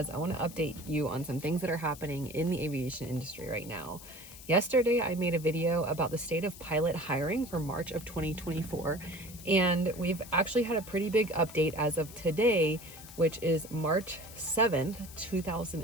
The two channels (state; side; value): noise; left; hiss, 16 dB below the sound